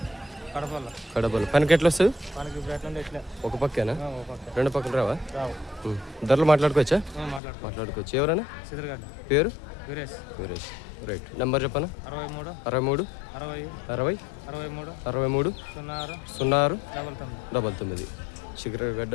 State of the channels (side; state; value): right; drops out; at 7.4 s